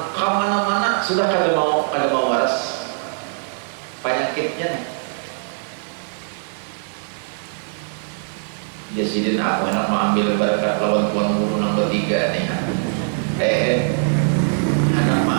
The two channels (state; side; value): silent; left; digital silence